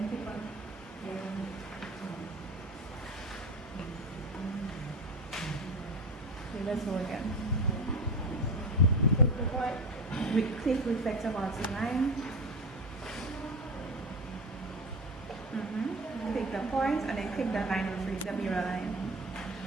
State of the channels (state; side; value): normal; both; correlation 0.24